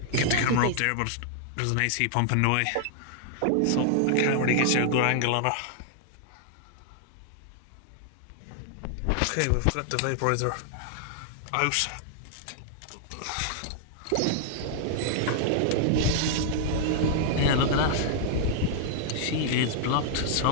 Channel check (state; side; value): different; both; correlation -0.01